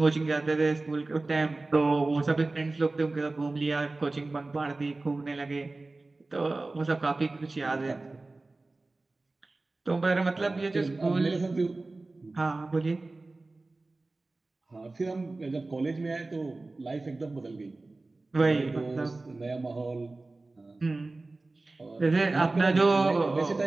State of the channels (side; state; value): left; quieter; 3.2 dB